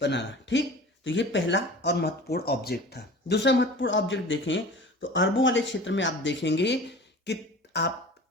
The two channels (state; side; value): normal; both; correlation 0.39